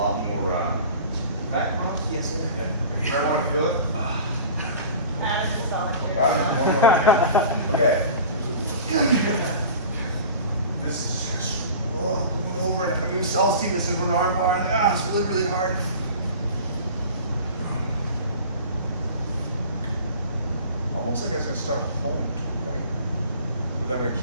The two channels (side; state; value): both; inverted; correlation -0.40